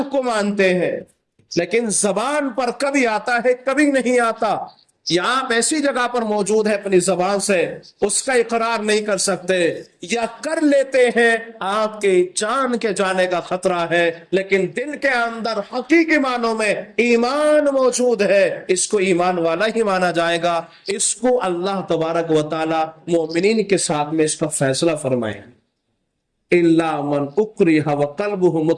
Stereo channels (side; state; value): both; identical; correlation 1.00